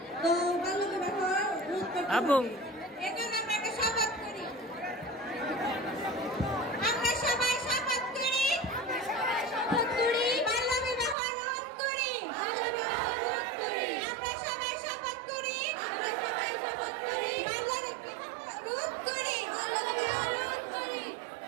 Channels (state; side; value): drops out; left; at 11.2 s